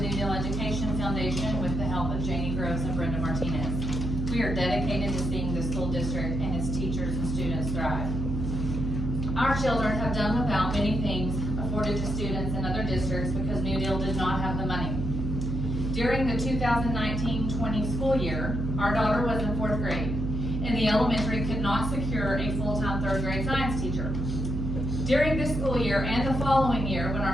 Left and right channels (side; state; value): right; noise; hum, 2 dB below the sound